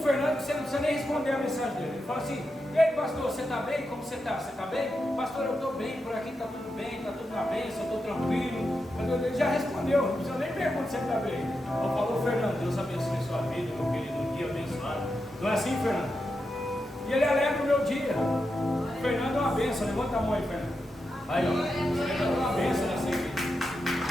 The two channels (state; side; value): normal; both; correlation 0.87